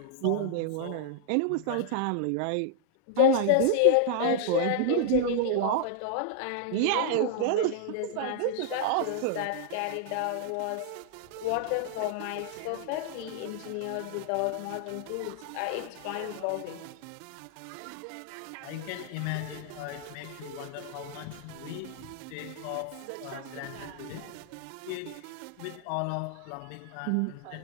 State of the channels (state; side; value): different; both; correlation -0.01